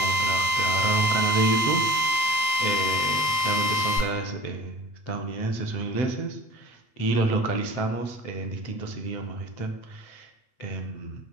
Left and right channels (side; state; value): right; late; 7.8 ms